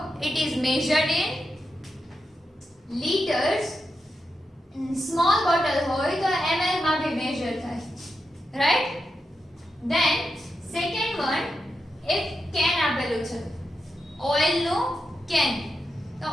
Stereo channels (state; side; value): normal; both; correlation 0.88